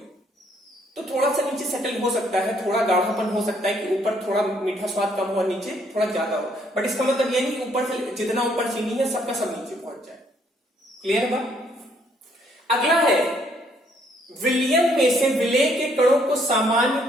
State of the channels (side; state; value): both; normal; correlation 0.67